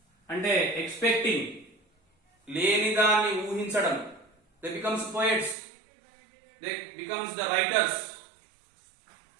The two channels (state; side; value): drops out; left; at 5.6 s